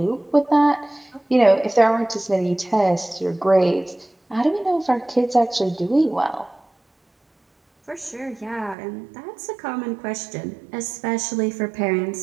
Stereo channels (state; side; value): drops out; left; at 8.8 s